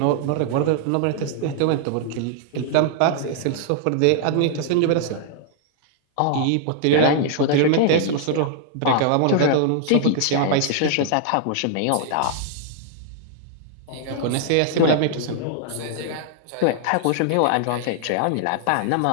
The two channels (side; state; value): both; different; correlation 0.00